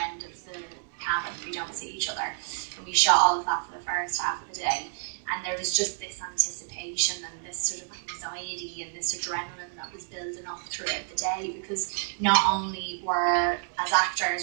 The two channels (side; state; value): left; silent; digital silence